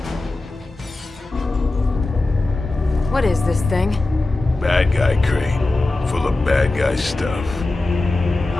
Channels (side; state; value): right; quieter; 3.0 dB